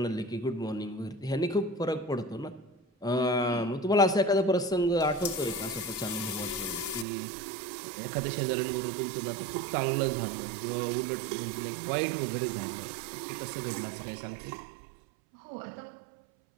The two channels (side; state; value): left; drops out; at 7.1 s